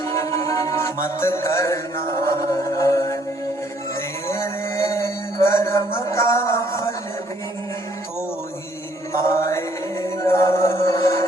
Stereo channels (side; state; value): both; normal; correlation 0.65